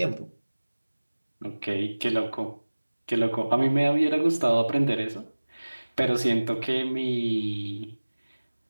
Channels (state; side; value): inverted; both; correlation -1.00